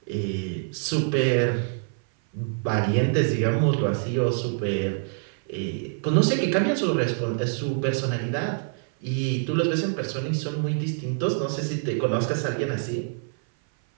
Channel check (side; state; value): left; silent; 57 dB below the other